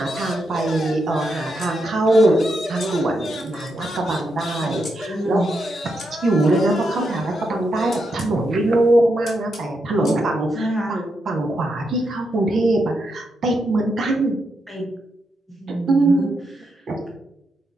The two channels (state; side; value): normal; both; correlation 0.83